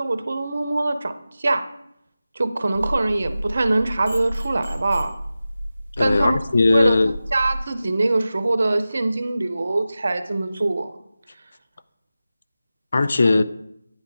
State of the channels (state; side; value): inverted; both; correlation -0.94